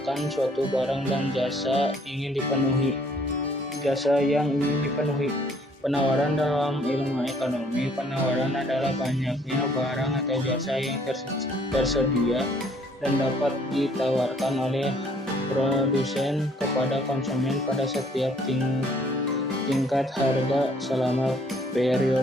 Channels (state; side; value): normal; both; correlation 0.61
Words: suatu barang dan jasa ingin dipenuhi. Jasa yang ingin dipenuhi. Penawaran dalam ilmu ekonomi. Penawaran adalah banyaknya barang atau jasa yang tersedia dan dapat ditawarkan oleh produsen kepada konsumen pada setiap tingkat harga selama